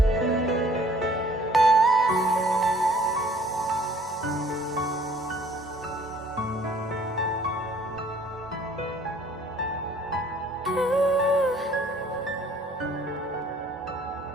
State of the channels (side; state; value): both; normal; correlation 0.57